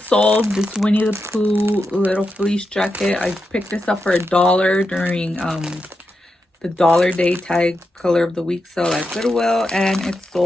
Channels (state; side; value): normal; both; correlation 0.87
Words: sold, this Winnie the Pooh little fleece jacket. I picked this up for $1 during the Dollar Day Tag Color of the Week sale at Goodwill, and it